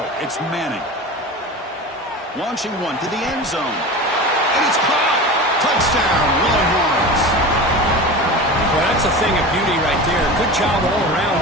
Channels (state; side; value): normal; both; correlation 0.31